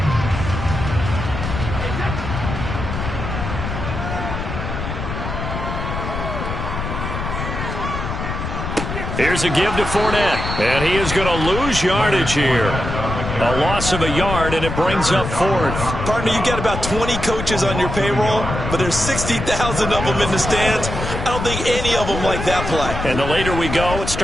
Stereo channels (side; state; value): left; noise; rumble, 5 dB below the sound